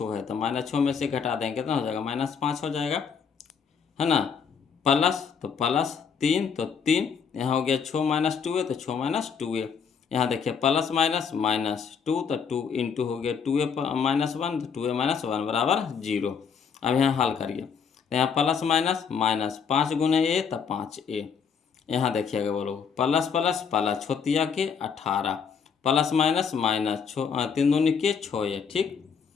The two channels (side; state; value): right; quieter; 6.5 dB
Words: है, तो -6 में से घटा देंगे कितना हो जाएगा, -5 हो जाएगा, है ना, प्लस तो प्लस 3, तो 3 यहाँ हो गया 6 - 2 है, तो 6 - 2 है। यहाँ देखिए प्लस माइनस -2, तो 2 इंटू हो गया 2a -1, तो 2a -1 बराबर 0। अब यहाँ हल करिए, तो यहाँ प्लस माइनस माइनस 5 गुने a, तो 5a। यहाँ देखिएगा बोलो, प्लस प्लस प्लस छोतिया के 18, प्लस माइनस माइनस 3 दूनी के 6a, ठीक।